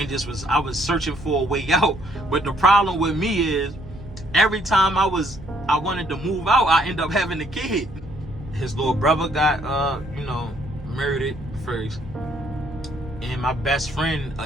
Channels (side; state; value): right; noise; hum, 16 dB below the sound